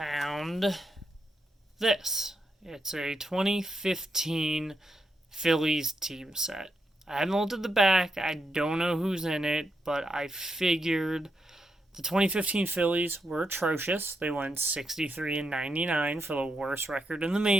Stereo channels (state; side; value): normal; both; correlation 0.82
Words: this. It's a 2015 Phillies team set. I haven't looked at the back, I don't know who's in it, but I figured the 2015 Phillies were atrocious. They went 63 and 99 for the worst record in the